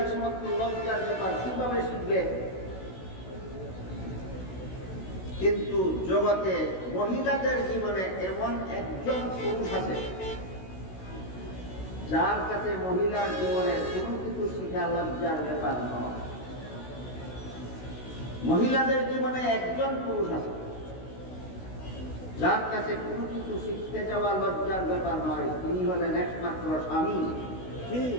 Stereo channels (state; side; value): late; right; 16 ms